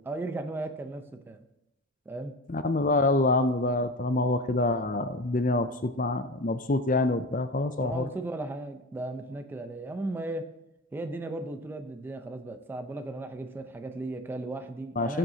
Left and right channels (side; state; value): both; normal; correlation 0.31